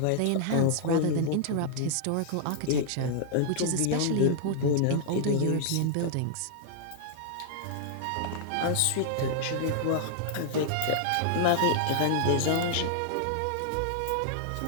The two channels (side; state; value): both; different; correlation -0.01